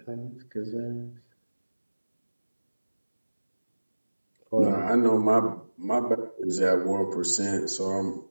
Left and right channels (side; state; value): both; inverted; correlation -1.00